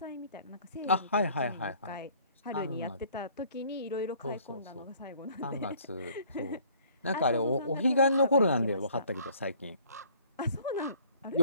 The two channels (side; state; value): both; inverted; correlation -0.56